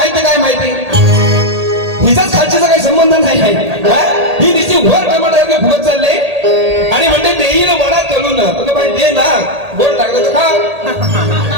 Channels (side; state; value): left; late; 1.8 ms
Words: काय माहिती. हिचाच खालचीचा काही संबंध नाही आहे. ही नुसती वर टमाटर फुगत चालले आणि म्हणते देईल वडा तळून. बाई दे ना गोड लागलं तर खा.